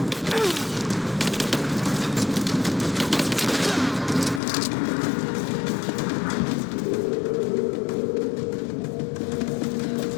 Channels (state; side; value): drops out; right; at 4.4 s